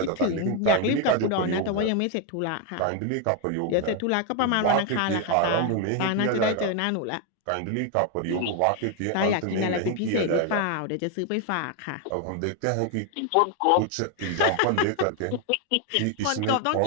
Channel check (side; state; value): both; different; correlation 0.01